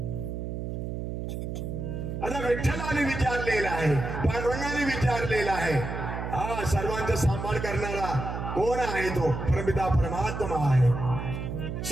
आता विठ्ठलाने विचारलेला आहे, पांडुरंगाने विचारलेला आहे, हा सर्वांचा सांभाळ करणारा कोण आहे? तो परमपिता परमात्मा आहे.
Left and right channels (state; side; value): noise; right; hum, 5 dB below the sound